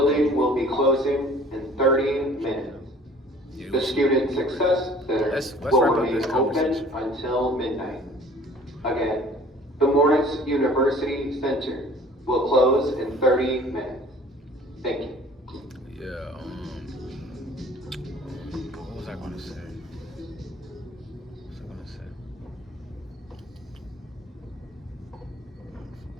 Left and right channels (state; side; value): normal; both; correlation 0.50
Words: will be closing in 30 minutes. Yeah, The Student Success Center let's will wrap up remain this open conversation. until midnight. Again, the Morris University Center will close in 30 minutes. Thank you. Yeah, what was I gonna say?